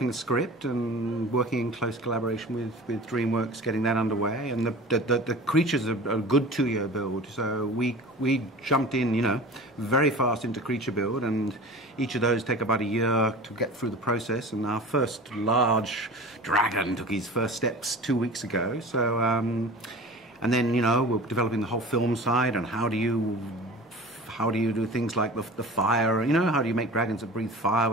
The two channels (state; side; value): normal; both; correlation 0.37